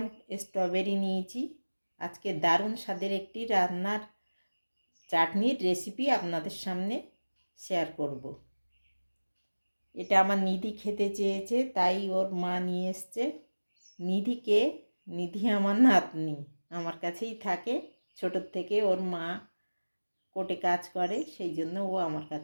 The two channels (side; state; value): both; inverted; correlation -1.00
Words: স্ট্রবেরি নিয়েছি। আজকে দারুণ স্বাদের একটি রান্নার চাটনির রেসিপি আপনাদের সামনে শেয়ার করব। এটা আমার নিধি খেতে চেয়েছে, তাই ওর মা নিয়ে এসছে। নিধি আমার নাতনি, আমার কাছেই থাকে ছোটোর থেকে। ওর মা কোর্টে কাজ করে, সেই জন্য ও আমার